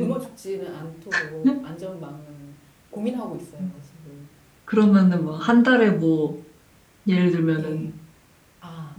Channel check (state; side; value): identical; both; correlation 1.00